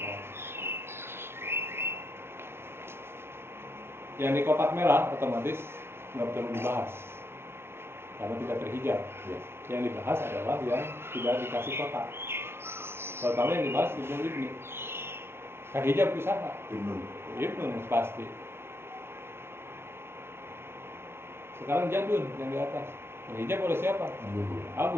yang di kotak merah otomatis nggak perlu dibahas karena tidak terhijab. Ya. Yang dibahas adalah yang tidak dikasih kotak. Pertama yang dibahas ibnu ibni. Kan hijab usaha. Ibnu pasti. Sekarang jadun yang di atas. Terhijab oleh siapa?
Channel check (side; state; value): left; late; 0.12 ms